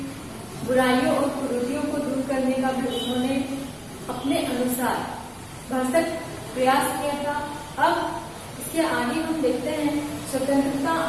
बुराइयों और कुरीतियों को दूर करने का भी उन्होंने अपने अनुसार भरसक प्रयास किया था। अब इसके आगे हम देखते हैं स्वतंत्रता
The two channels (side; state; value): both; identical; correlation 1.00